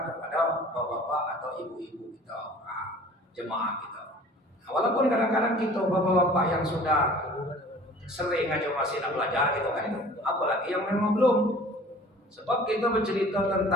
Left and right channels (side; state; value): both; normal; correlation 0.47